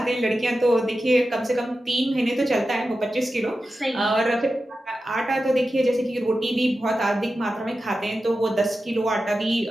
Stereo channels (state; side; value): normal; both; correlation 0.92